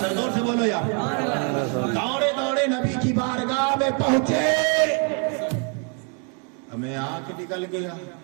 जोर से बोलो यार। दौड़े नबी की बारगाह में पहुंचे। हमें आंख निकल गया,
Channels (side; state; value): left; quieter; 39.4 dB